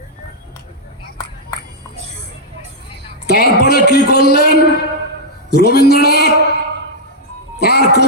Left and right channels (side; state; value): both; normal; correlation -0.05